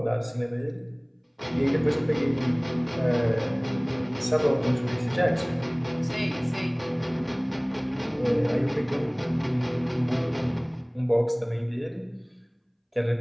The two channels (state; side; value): identical; both; correlation 1.00